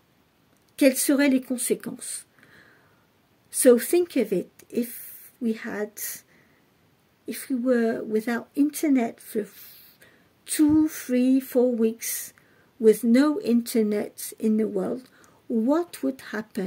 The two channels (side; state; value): both; identical; correlation 1.00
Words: quelles seraient les conséquences? So think of it, if we were without Internet for 2, 3, 4 weeks, with no Internet in the world, what would